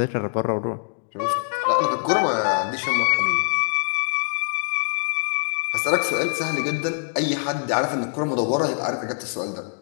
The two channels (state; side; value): silent; right; digital silence